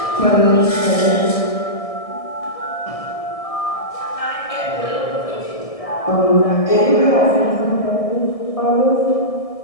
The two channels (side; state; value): right; late; 1.6 ms